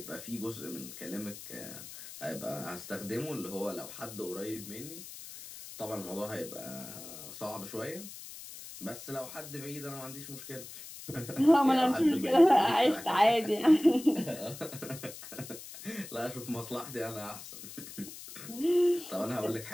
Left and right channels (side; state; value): left; noise; hiss, 13 dB below the sound